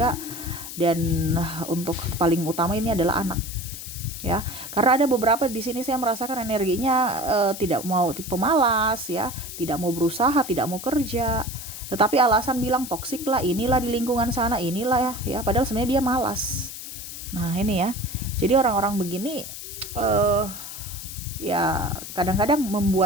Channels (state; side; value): noise; left; hiss, 10 dB below the sound